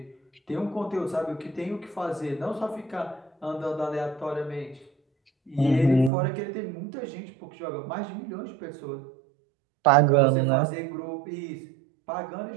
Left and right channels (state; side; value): drops out; left; at 6.1 s